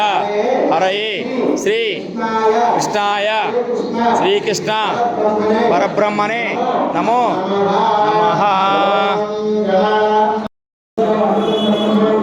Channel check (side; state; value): both; identical; correlation 1.00